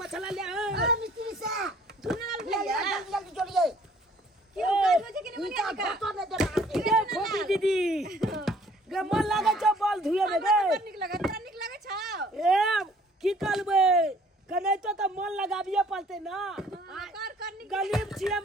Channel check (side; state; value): both; normal; correlation 0.57